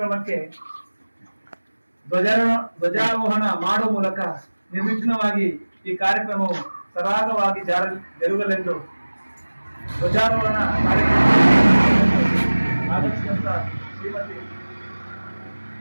ಧ್ವಜಾರೋಹಣ ಮಾಡುವ ಮೂಲಕ ನಿರ್ವಿಘ್ನವಾಗಿ ಈ ಕಾರ್ಯಕ್ರಮವು ಸರಾಗವಾಗಿ ಜರುಗಲೆಂದು ಧ್ವಜಾರೋಹಣ ಕಾರ್ಯಕ್ರಮ ಆಗಮಿಸಿದಂತ ಶ್ರೀಮತಿ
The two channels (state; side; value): inverted; both; correlation -1.00